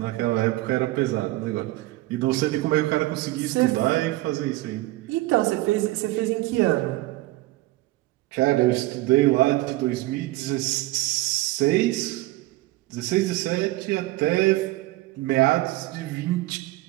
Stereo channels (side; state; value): left; quieter; 18.8 dB